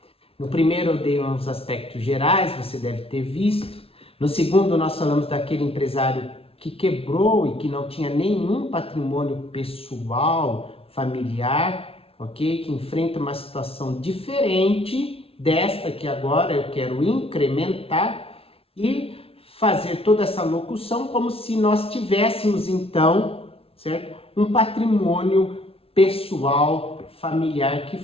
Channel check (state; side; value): late; right; 0.27 ms